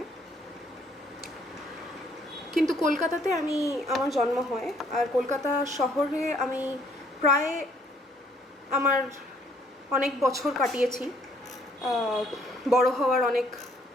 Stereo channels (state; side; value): normal; both; correlation 0.64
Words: কিন্তু কলকাতাতে আমার জন্ম হয়। আর কলকাতা শহরে আমি প্রায় আমার অনেক বছর কাটিয়েছি। বড় হওয়ার